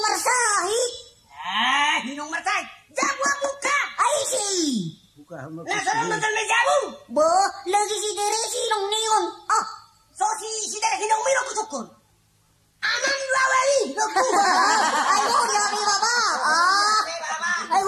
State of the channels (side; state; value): both; identical; correlation 1.00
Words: Hinong marsahi. Jabuan buka. Ai si. Buka. Nah sana betul bejaru. Bo. Lagi si Tere sinong niyon. So si Tere hinong miro kusukun. Aman lawali. Ay huri abi baba. Ay